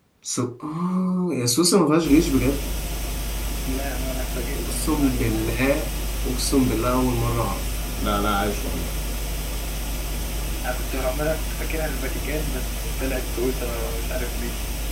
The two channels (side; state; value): both; identical; correlation 1.00